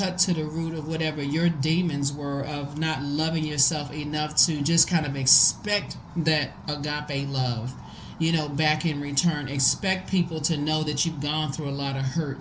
to the root of whatever your demons were of not loving yourself enough to just kind of expect that agape love, back in return. Expect people to know that you've gone through a lot of hurt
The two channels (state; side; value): identical; both; correlation 1.00